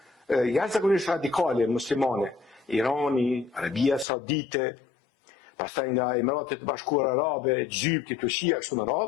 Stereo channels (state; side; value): drops out; right; at 4.0 s